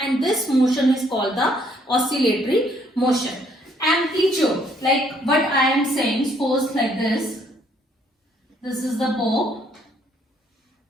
and this motion is called the oscillatory motion. Amplitude, like what I am saying, suppose like this. This is the bow.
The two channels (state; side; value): normal; both; correlation 0.66